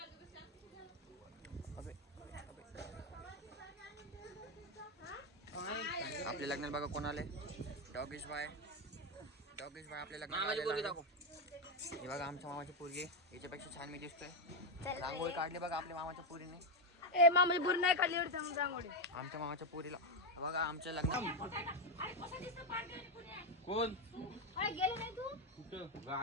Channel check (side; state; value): both; normal; correlation 0.06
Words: आपल्या लग्नात बघा कोण आले. डॉगेश भाई आपल्या लग्नात. हे बघा आमच्या मामाची पोरगी, याच्यापेक्षा छान मी दिसतोय. रांगोळी काढली बघा आपल्या मामाच्या पोरीने. मामाची पोरी नाही काढली रांगोळी. आमच्या मामाच्या पोरीला बघा आमच्या लग्नात. कोण गेले नाही तू कुठं